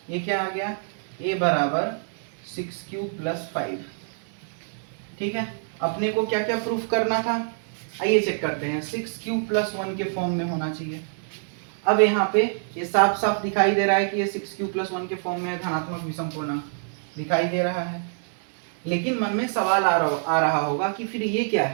ये क्या आ गया? a बराबर 6q प्लस 5। ठीक है, अपने को क्या क्या प्रूफ करना था? आइए चेक करते हैं। 6q प्लस 1 के फॉर्म में होना चाहिए। अब यहाँ पे ये साफ साफ दिखाई दे रहा है कि ये 6q प्लस 1 के फॉर्म में धनात्मक विषम पूर्णांक दिखाई दे रहा है। लेकिन मन में सवाल आ रहा होगा कि फिर ये क्या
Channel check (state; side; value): silent; left; 61 dB below the other